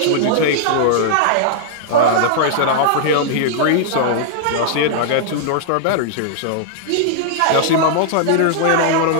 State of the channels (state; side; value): different; both; correlation -0.02